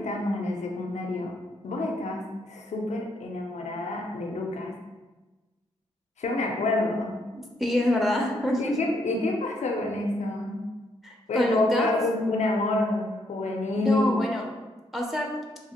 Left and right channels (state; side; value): normal; both; correlation 0.73